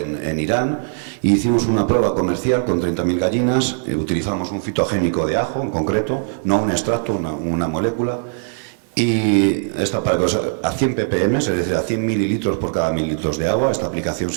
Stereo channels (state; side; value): silent; left; digital silence